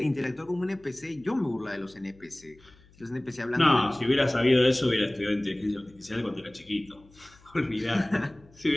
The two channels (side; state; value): left; noise; hum, 27 dB below the sound